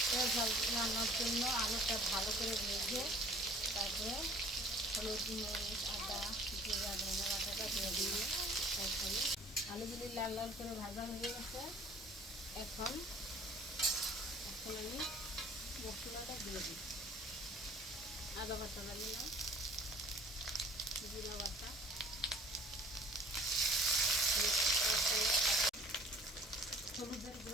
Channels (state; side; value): normal; both; correlation 0.52